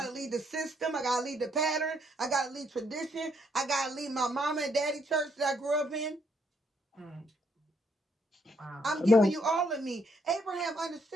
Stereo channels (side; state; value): both; normal; correlation 0.72